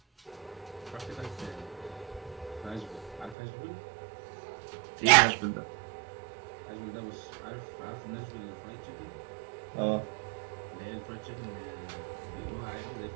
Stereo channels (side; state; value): left; drops out; at 3.4 s